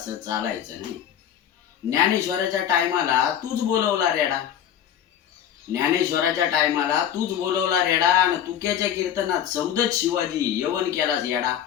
चालायचं नाही. ज्ञानेश्वराच्या टायमाला तूच बोलवला रेडा. ज्ञानेश्वराच्या टायमाला तूच बोलवला रेडा, आणि तुक्याच्या कीर्तनात सौदत शिवाजी यवन केलास येडा.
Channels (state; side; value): quieter; right; 9.8 dB